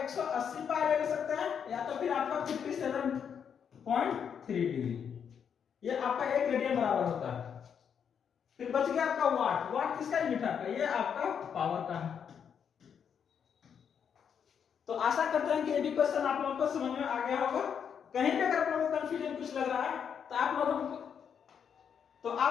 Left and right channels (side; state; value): right; quieter; 7.6 dB